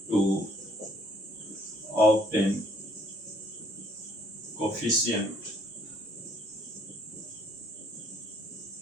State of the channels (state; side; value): normal; both; correlation 0.63